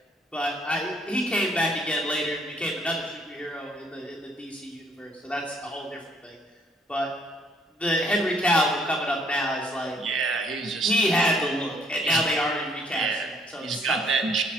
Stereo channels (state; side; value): normal; both; correlation 0.65